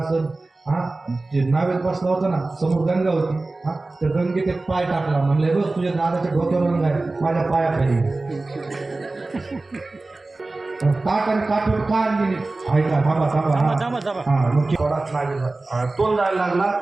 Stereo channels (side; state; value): left; quieter; 3.2 dB